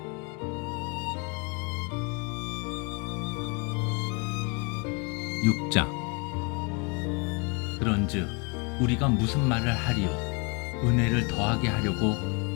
6장. 그런즉 우리가 무슨 말을 하리요? 은혜를 더하게 하려고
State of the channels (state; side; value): quieter; right; 32.4 dB